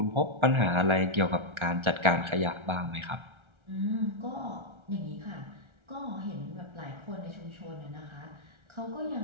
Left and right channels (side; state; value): left; late; 1.3 ms